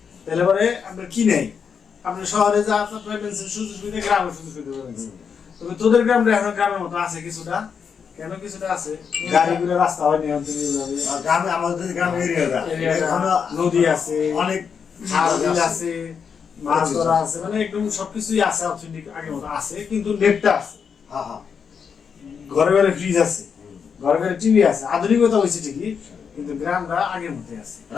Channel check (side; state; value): right; quieter; 6.6 dB